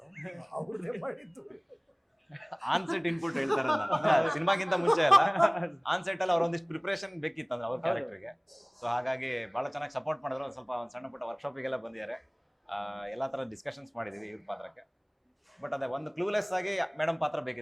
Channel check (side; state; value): both; identical; correlation 1.00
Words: ಅವ್ರದ್ದೇ ಮಾಡಿದ್ದು. ಆನ್ಸೆಟ್ ಇನ್ಪುಟ್ ಹೇಳ್ತಾರೆ ಸಿನಿಮಾಗಿಂತ ಮುಂಚೆ ಅಲ್ಲ, ಆನ್ಸೆಟ್ ಅಲ್ಲಿ ಅವ್ರೊಂದಿಷ್ಟು ಪ್ರಿಪರೇಷನ್ ಬೇಕಿತ್ತು ಅಂದ್ರೆ ಅವ್ರ ಕ್ಯಾರೆಕ್ಟರ್ಗೆ. ಸೊ ಹಾಗಾಗಿ ಬಹಳ ಚೆನ್ನಾಗಿ ಸಪೋರ್ಟ್ ಮಾಡಿದ್ರು. ಒಂದು ಸ್ವಲ್ಪ ಒಂದು ಸಣ್ಣ ಪುಟ್ಟ ವರ್ಕ್ಶಾಪಿಗೆಲ್ಲ ಬಂದಿದ್ದಾರೆ, ಎಲ್ಲಾ ತರ ಡಿಸ್ಕಷನ್ಸ್ ಮಾಡಿದೀವಿ ಇವ್ರ ಪಾತ್ರಕ್ಕೆ. ಬಟ್ ಅದೇ ಒಂದು ಕ್ಲೂಲೆಸ್ ಆಗಿ ಮೇಡಮ್ ಪಾತ್ರ